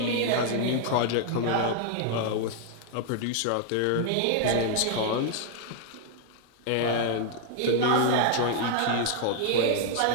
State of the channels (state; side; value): different; both; correlation 0.00